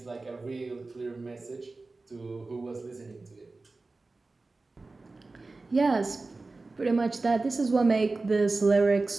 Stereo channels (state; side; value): quieter; left; 3.5 dB